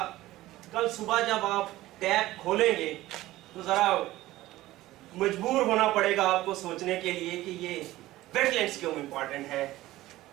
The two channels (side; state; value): left; quieter; 16.6 dB